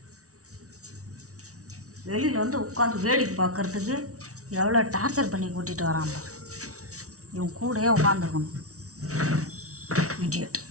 வெளியில் வந்து உட்காந்து வேடிக்கை பார்க்குறதுக்கு எவ்வளோ டார்ச்சர் பண்ணி கூட்டிகிட்டு வரான். இவன் கூடயே உட்காந்துருக்கணும்.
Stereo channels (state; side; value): late; left; 0.65 ms